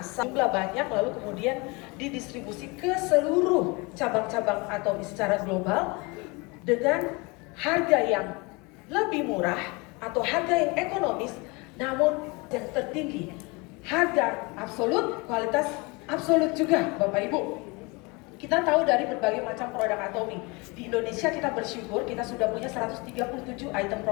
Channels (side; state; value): right; quieter; 27.3 dB